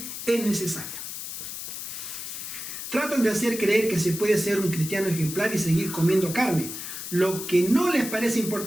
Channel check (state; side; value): noise; left; hiss, 7 dB below the sound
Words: es necesaria. Tratan de hacer creer que se puede ser un cristiano ejemplar y seguir comiendo carne, lo que no les parece